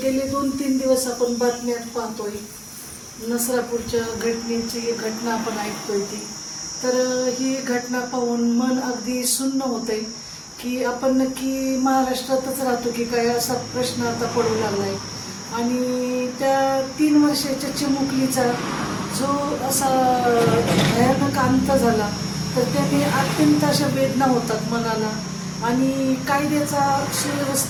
गेले 2-3 दिवस आपण बातम्यात पाहतोय, नसरापूरच्या घटना आपण ऐकतोय ती. तर ही घटना पाहून मन अगदी सुन्न होतंय की आपण नक्की महाराष्ट्रातच राहतो की काय, असा प्रश्न आता पडू लागलाय. आणि त्या 3 वर्षाच्या चिमुकलीचा जो असा भयानक अंत झाला, तर त्याने अत्यंत अशा वेदना होतात मनाला. आणि कायद्याचा,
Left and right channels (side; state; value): both; identical; correlation 1.00